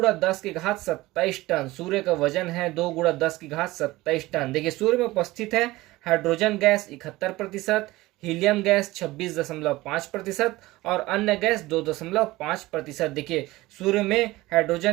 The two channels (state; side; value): quieter; left; 19.0 dB